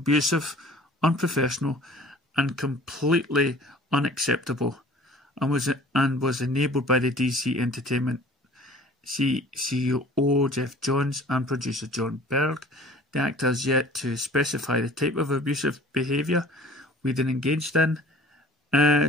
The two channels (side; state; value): both; normal; correlation 0.48